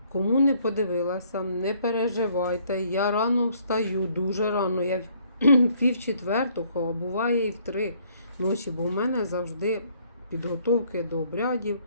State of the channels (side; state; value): both; inverted; correlation -0.64